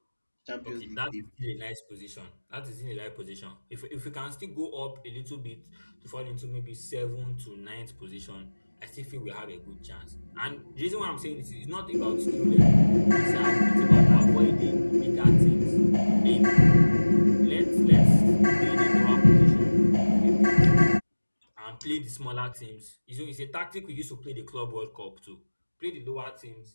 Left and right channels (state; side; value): inverted; both; correlation -1.00